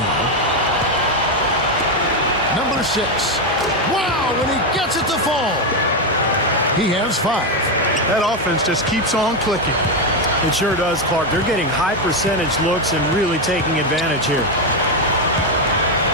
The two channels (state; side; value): normal; both; correlation 0.07